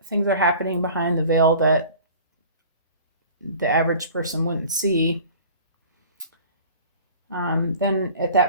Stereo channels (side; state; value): both; inverted; correlation -0.44